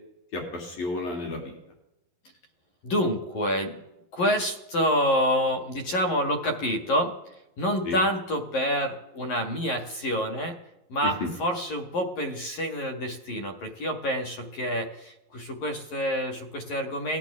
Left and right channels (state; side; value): late; right; 11 ms